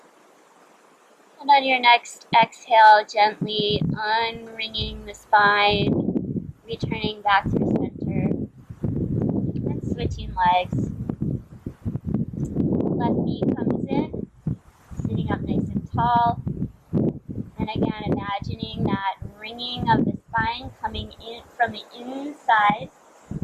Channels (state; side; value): identical; both; correlation 1.00